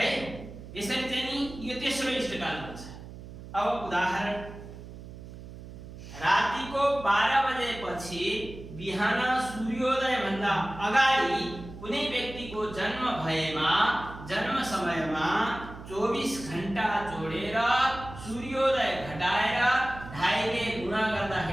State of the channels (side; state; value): right; noise; hum, 14 dB below the sound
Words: यसरी चाहिँ नि यो तेस्रो इष्टकाल हुन्छ। अब उदाहरण रातिको 12 बजेपछि बिहान सूर्योदय भन्दा अगाडि कुनै व्यक्तिको जन्म भएमा जन्म समयमा 24 घण्टा जोडेर सूर्योदय घटाएर ढाईले गुणा